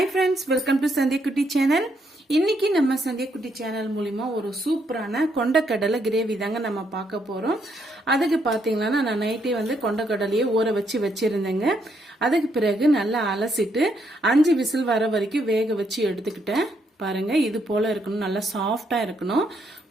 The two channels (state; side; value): normal; both; correlation 0.75